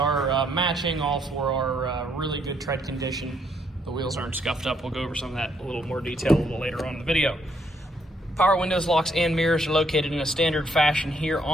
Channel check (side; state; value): both; normal; correlation 0.72